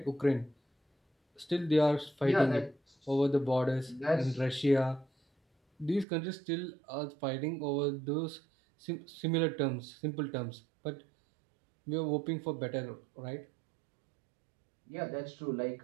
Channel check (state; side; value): drops out; left; at 6.1 s